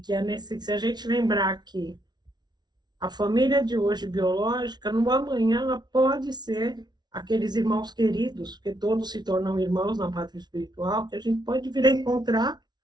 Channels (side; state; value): left; late; 0.20 ms